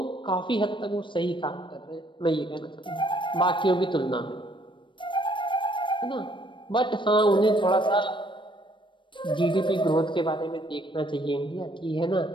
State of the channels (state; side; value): late; right; 0.24 ms